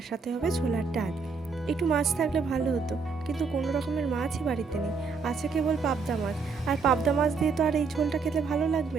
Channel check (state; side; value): quieter; left; 4.8 dB